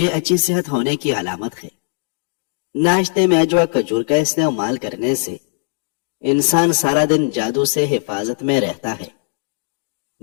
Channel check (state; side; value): silent; right; digital silence